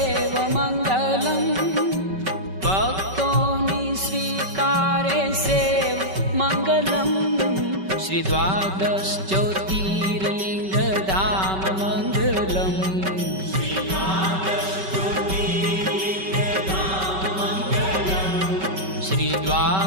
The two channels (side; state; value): left; late; 5.2 ms